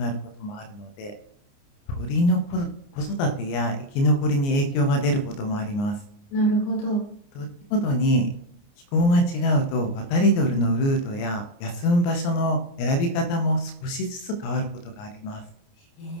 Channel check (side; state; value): right; late; 29 ms